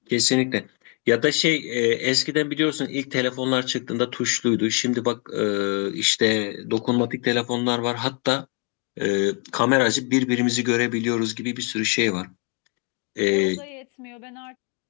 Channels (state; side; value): quieter; right; 35.6 dB